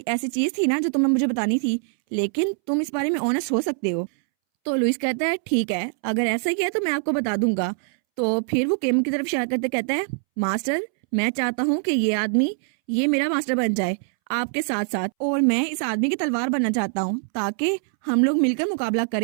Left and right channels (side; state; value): left; silent; 63 dB below the other